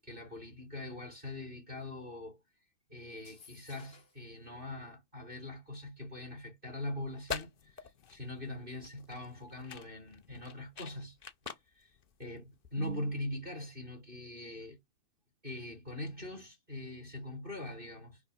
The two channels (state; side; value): late; left; 2.6 ms